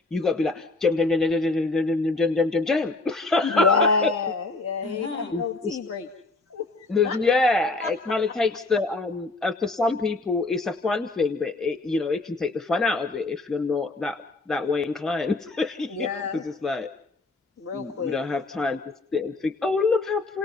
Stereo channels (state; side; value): quieter; right; 3.3 dB